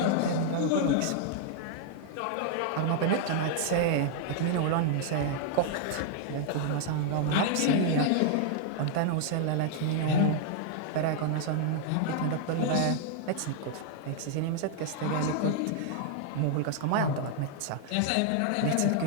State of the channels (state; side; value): different; both; correlation -0.01